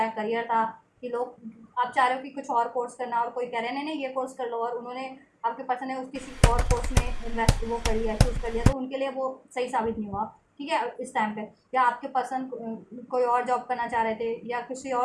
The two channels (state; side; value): identical; both; correlation 1.00